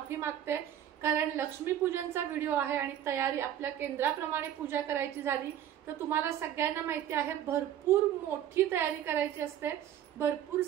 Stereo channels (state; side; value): quieter; left; 10.8 dB